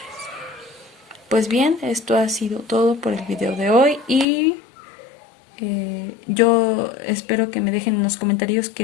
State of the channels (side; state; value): right; drops out; at 4.2 s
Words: Pues bien, esto ha sido todo por el video de hoy y yo espero que me dejen en los comentarios